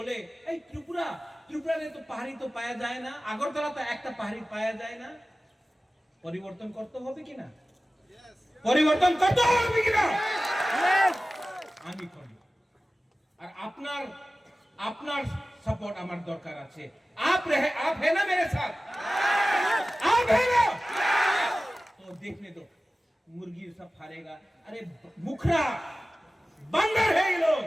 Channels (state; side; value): normal; both; correlation 0.96